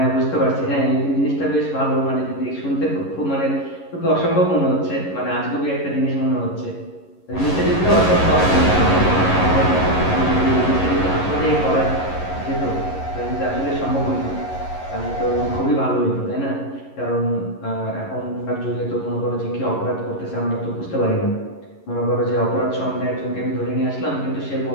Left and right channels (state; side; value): late; right; 11 ms